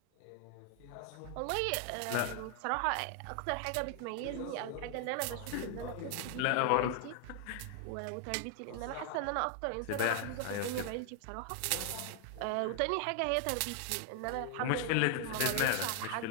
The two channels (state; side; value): different; both; correlation 0.00